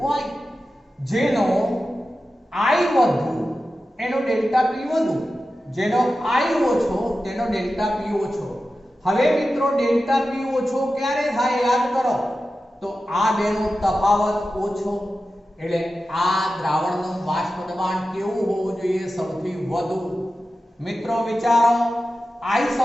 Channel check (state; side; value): normal; both; correlation 0.93